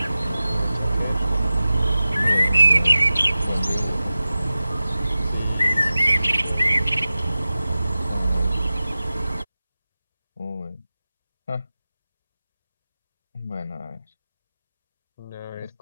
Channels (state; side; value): inverted; both; correlation -0.95